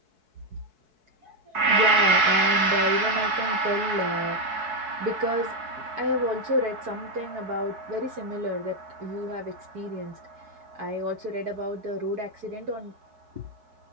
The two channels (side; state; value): left; late; 4.6 ms